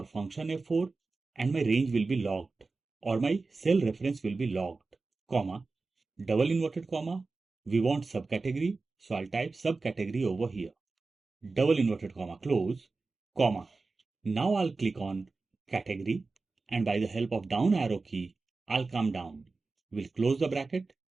function F4 and my range will be locked or my cell reference will be locked, comma, double inverted comma. We want subcategory, so I'll type subcategory over here. Double inverted comma close, comma. Now I'll click on category and by the help of down arrow key, I'll come down. We'll close the bracket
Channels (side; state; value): left; quieter; 3.8 dB